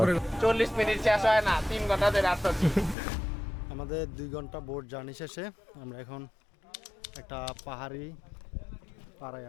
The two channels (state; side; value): drops out; right; at 3.0 s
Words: 40 মিনিট শেষ হয় না 3 ঘন্টা ধরে আসছি। আমাদের 2 ঘন্টা বোট জার্নি শেষে আমরা এখন একটা পাহাড়ি পাড়ায়